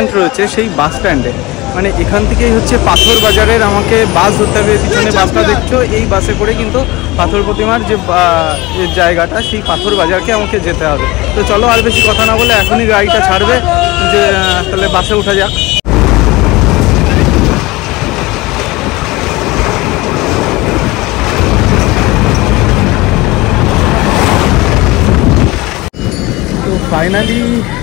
রয়েছে সেই বাস স্ট্যান্ডে, মানে এখান থেকেই হচ্ছে পাথর বাজারের আমাকে বাস ধরতে হবে। পিছনে বাসটা দেখছো, এই বাসে করে কিন্তু পাথর প্রতিমার যে জায়গাটা সেই পাথর বাজারকে আমাকে যেতে হবে। তো চলো আর বেশি কথা না বলে এখনই গাড়িটা ছাড়বে, যে তাহলে বাসে ওঠা যাক। তো ফাইনালি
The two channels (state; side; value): quieter; right; 21.2 dB